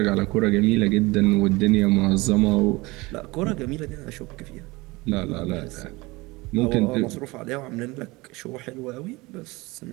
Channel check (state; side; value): quieter; left; 22.7 dB